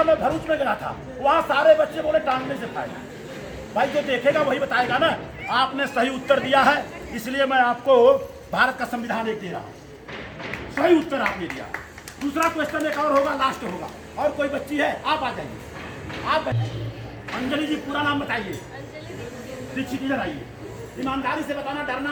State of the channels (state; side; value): identical; both; correlation 1.00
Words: मैं, भरूच में गया था, वहाँ सारे बच्चे बोले टांगने से फायदा। भाई जो देखेगा वही बताएगा ना। आपने सही उत्तर दिया है, इसलिए मैं आपको भारत का संविधान एक दे रहा हूँ। सही उत्तर आपने दिया। दूसरा क्वेश्चन एक और होगा, लास्ट होगा। और कोई बच्ची है? आप आ जाइए। आप अंजलि जी, पूरा नाम बताइए। दीक्षित, इधर आइए। ईमानदारी से बताना,